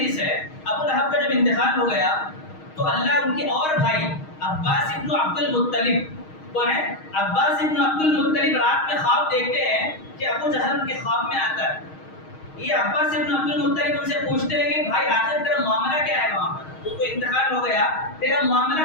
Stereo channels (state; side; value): late; right; 6.4 ms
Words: ہے۔ ابو لہب کا جب انتقال ہو گیا تو اللہ ان کے اور بھائی عباس ابن عبد المطلب، کون ہے؟ عباس ابن عبد المطلب رات میں خواب دیکھتے ہیں کہ ابو جہل ان کے خواب میں آتا ہے۔ یہ عباس ابن عبد المطلب ان سے پوچھتے ہیں کہ بھائی آخر تیرا معاملہ کیا ہے وہاں پر؟ تو کوئی انتقال ہو گیا، تیرا